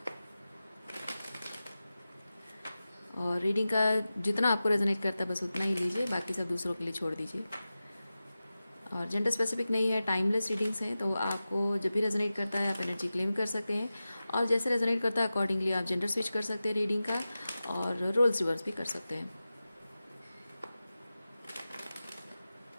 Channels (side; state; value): both; inverted; correlation -0.95